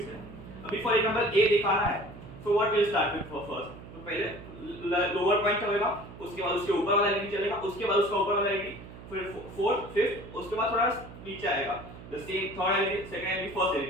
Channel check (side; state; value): right; noise; hum, 15 dB below the sound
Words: है. अभी for example A दिखाना है. So what will start with first? तो पहले lower point होगा, उसके बाद उसके ऊपर वाला एलईडी चलेगा, उसके बाद उसका ऊपर वाला एलईडी, फिर फोर्थ, फिफ्थ, उसके बाद थोड़ा नीचे आएगा. The same third LED, second LED, first